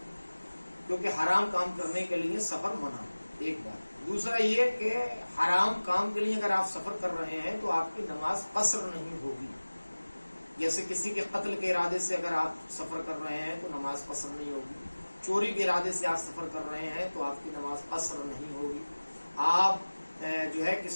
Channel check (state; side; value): inverted; both; correlation -1.00